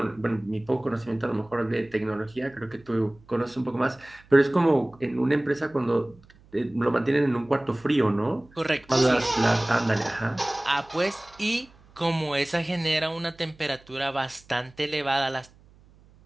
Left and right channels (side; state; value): right; noise; hum, 27 dB below the sound